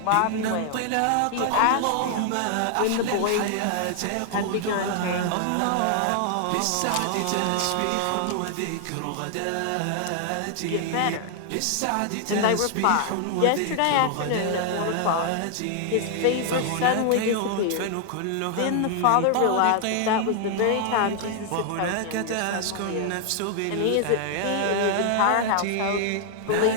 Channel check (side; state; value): both; different; correlation 0.00